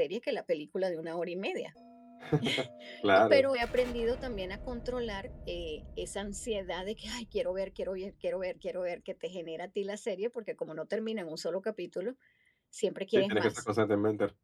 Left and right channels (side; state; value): both; identical; correlation 1.00